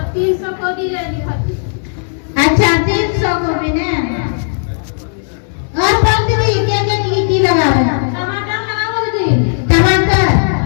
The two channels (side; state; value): right; silent; digital silence